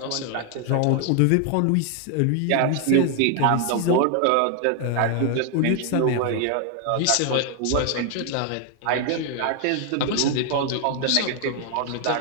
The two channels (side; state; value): both; different; correlation 0.00